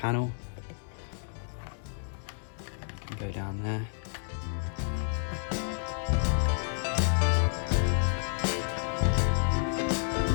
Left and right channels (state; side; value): silent; right; 57 dB below the other